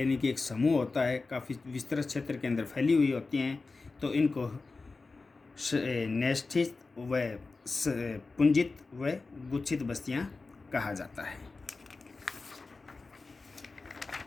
कि एक समूह होता है, काफ़ी विस्तृत क्षेत्र के अंदर फैली हुई होती हैं। तो इनको न्यस्थित व पुंजित व गुच्छित बस्तियां कहा जाता है।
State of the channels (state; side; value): quieter; right; 3.9 dB